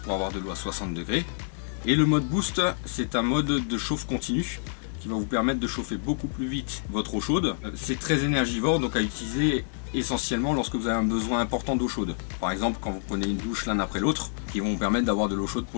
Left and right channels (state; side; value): silent; right; digital silence